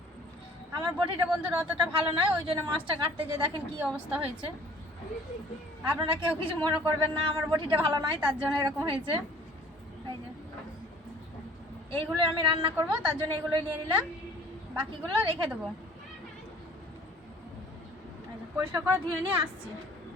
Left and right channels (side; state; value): both; normal; correlation 0.51